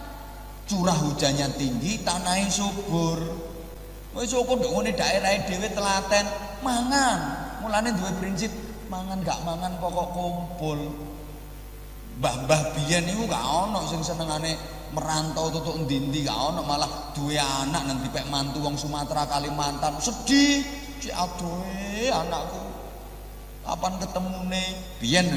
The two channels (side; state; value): both; identical; correlation 1.00